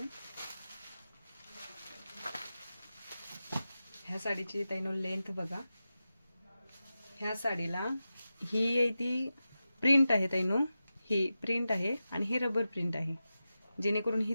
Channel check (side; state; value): both; inverted; correlation -0.93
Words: ह्या साडीची ताईनो लेंथ बघा. ह्या साडीला ही आहे ती प्रिंट आहे ताईनो, ही प्रिंट आहे आणि ही रबर प्रिंट आहे, जेणेकरून ही